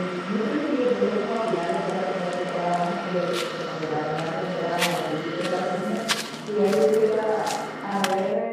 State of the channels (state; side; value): identical; both; correlation 1.00